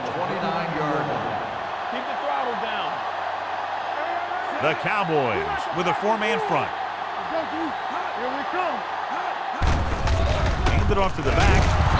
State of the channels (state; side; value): identical; both; correlation 1.00